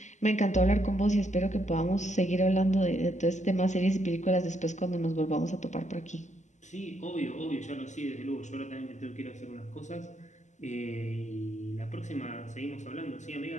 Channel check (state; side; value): late; right; 0.34 ms